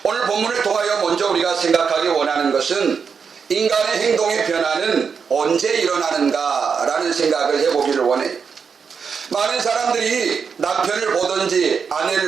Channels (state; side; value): quieter; left; 6.1 dB